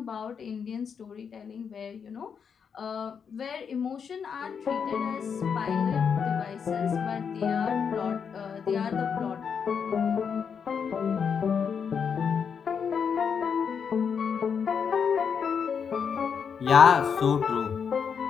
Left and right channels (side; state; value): right; quieter; 6.7 dB